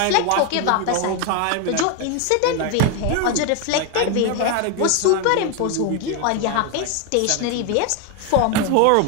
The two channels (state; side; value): different; both; correlation 0.01